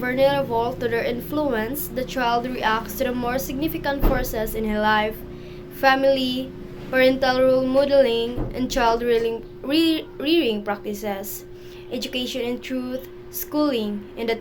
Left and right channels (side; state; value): both; identical; correlation 1.00